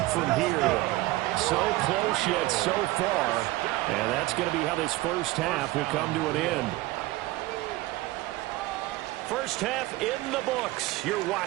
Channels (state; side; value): quieter; left; 18.7 dB